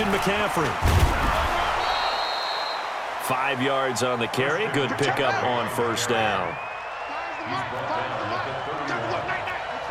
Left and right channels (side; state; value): both; identical; correlation 1.00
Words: McCaffrey. 5 yards on the carry. Good pickup on 1st down. He's brought down at the 31.